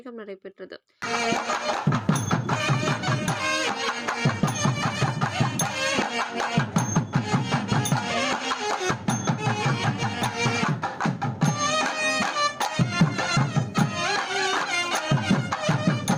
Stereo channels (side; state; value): both; identical; correlation 1.00